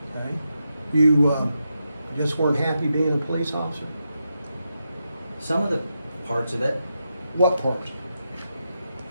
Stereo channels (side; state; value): both; inverted; correlation -0.86